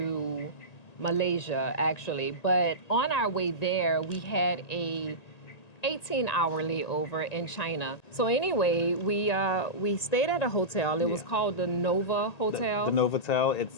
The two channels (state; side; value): late; right; 1.9 ms